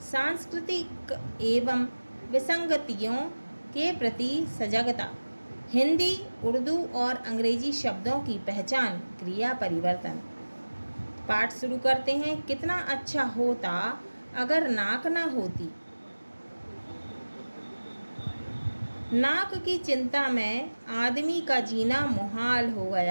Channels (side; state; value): both; inverted; correlation -1.00